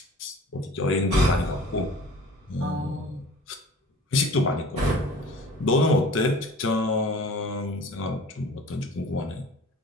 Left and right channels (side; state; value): both; normal; correlation 0.45